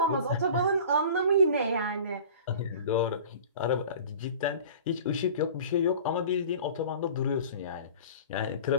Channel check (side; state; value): both; inverted; correlation -0.41